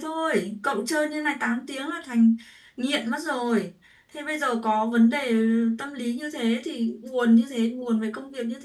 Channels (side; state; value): both; identical; correlation 1.00